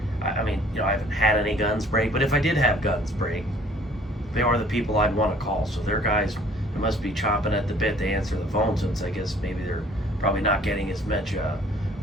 I mean, you know, I haven't had any guns break, but if I did have guns break, they are the people I'd want to call. So their guys, they must be chomping at the bit to answer the phone, since I guess maybe they're probably not getting as much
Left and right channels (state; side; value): normal; both; correlation 0.55